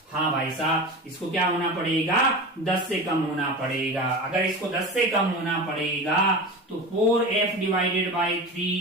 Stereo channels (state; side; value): normal; both; correlation 0.29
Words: हाँ भाई साहब, इसको क्या होना पड़ेगा, 10 से कम होना पड़ेगा। अगर इसको 10 से कम होना पड़ेगा तो 4F divided by